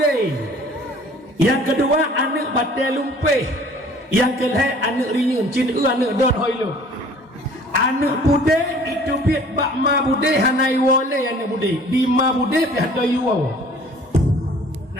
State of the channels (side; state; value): both; normal; correlation 0.51